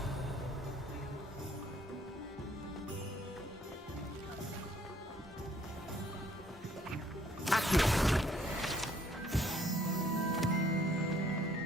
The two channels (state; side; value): normal; both; correlation 0.63